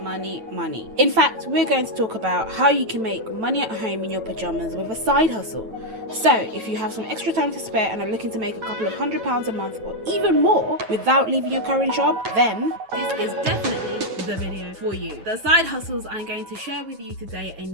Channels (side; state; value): left; late; 9.1 ms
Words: In fact, we're going to talk about how you can make money at home in your pajamas with a side hustle. So, if you have some extra time to spare and are looking to make a couple of £100 a month or even more without leaving your current job, then this is definitely the video for you. The side hustles I'm going to share with you today